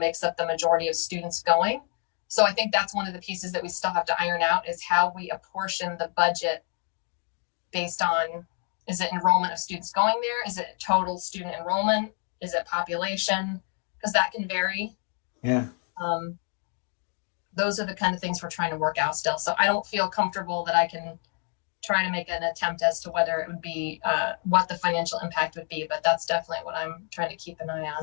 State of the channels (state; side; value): quieter; right; 39.5 dB